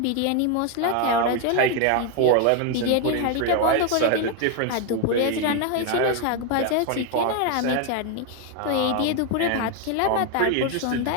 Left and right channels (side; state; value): both; different; correlation 0.01